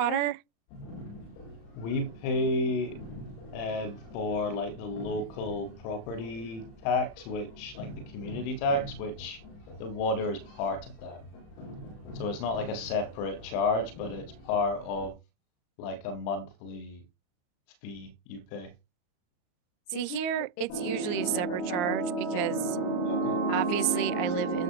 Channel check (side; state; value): right; late; 34 ms